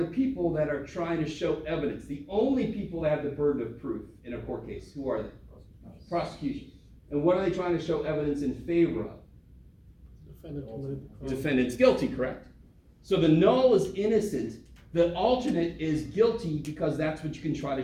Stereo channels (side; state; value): both; identical; correlation 1.00